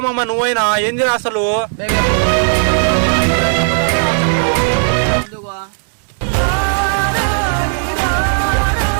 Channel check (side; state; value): left; silent; digital silence